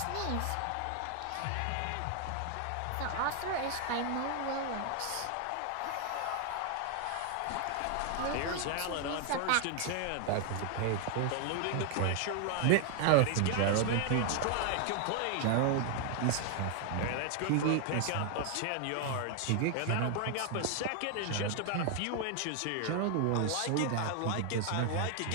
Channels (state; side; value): different; both; correlation 0.00